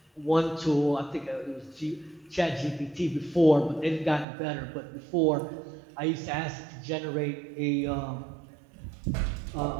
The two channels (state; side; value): drops out; left; at 4.2 s